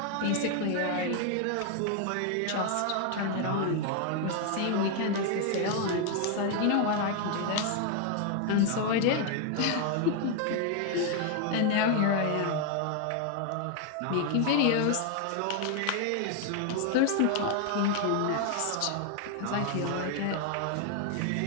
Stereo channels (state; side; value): different; both; correlation 0.01